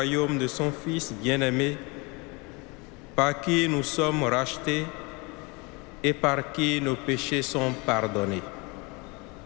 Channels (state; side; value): quieter; right; 28.1 dB